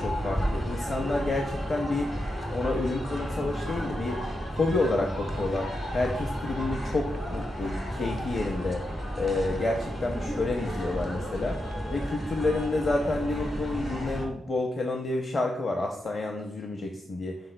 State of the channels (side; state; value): both; normal; correlation 0.86